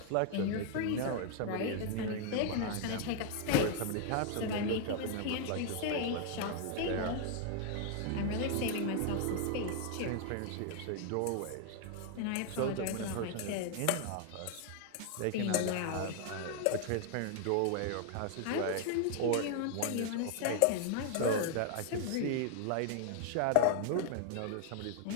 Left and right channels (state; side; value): different; both; correlation 0.00